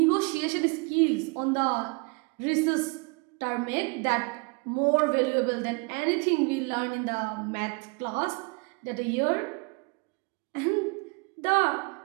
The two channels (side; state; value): left; quieter; 30.8 dB